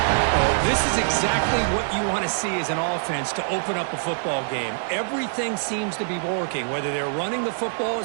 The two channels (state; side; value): silent; left; digital silence